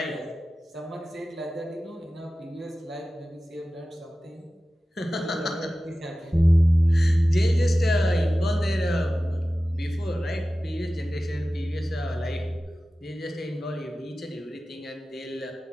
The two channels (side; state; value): both; normal; correlation 0.95